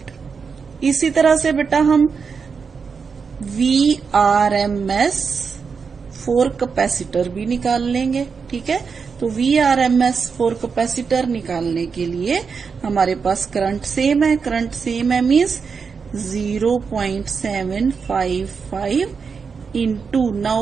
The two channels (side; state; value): left; quieter; 5.6 dB